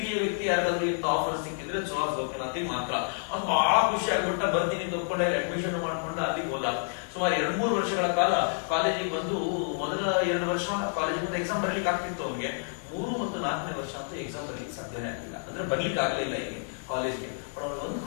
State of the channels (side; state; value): right; silent; digital silence